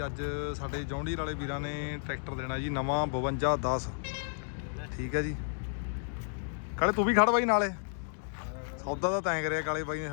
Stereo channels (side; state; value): right; silent; digital silence